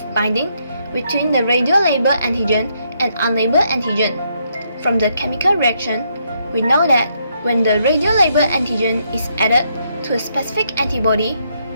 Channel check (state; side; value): inverted; both; correlation -0.75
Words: binding between the radiolabeled antigen and unlabeled antigen. From the chemical reaction, we know that when the radiolabeled antigen is added to a specific antibody,